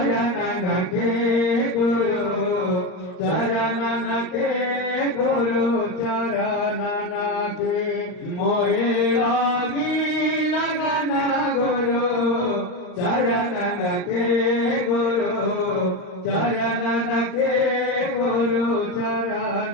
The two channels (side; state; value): right; late; 39 ms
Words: के गुरु चरणन के गुरु चरणन के मोहे लागी लगन गुरु चरणन के गुरु चरणन के गुरु